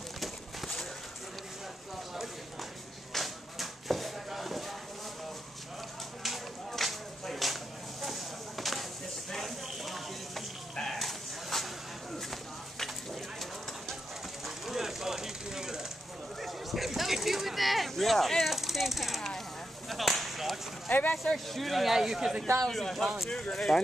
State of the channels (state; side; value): normal; both; correlation 0.85